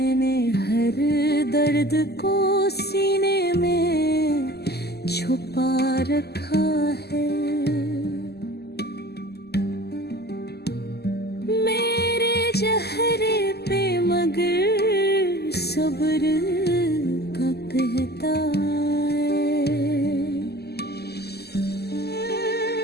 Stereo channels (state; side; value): late; right; 0.47 ms